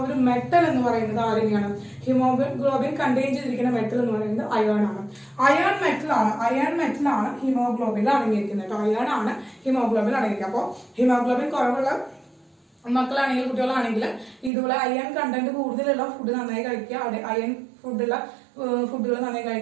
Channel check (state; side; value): drops out; left; at 14.5 s